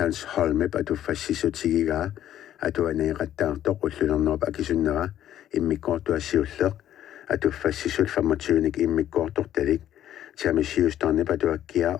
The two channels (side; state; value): right; quieter; 11.6 dB